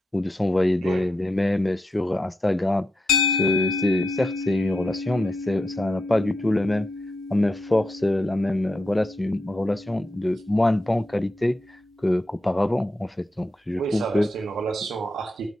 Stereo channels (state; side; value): normal; both; correlation 0.85